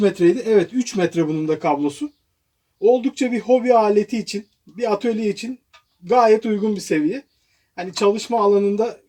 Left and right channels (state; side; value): identical; both; correlation 1.00